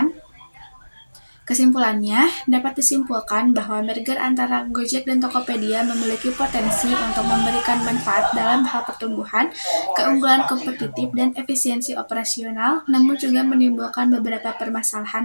kesimpulannya dapat disimpulkan bahwa merger antara Gojek dan Tokopedia memiliki potensi untuk memberikan manfaat dalam hal pertumbuhan, keunggulan kompetitif, dan efisiensi operasional, namun juga menimbulkan beberapa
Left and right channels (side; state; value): both; inverted; correlation -1.00